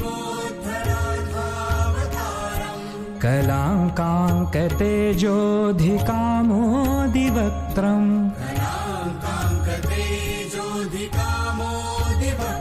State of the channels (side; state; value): both; identical; correlation 1.00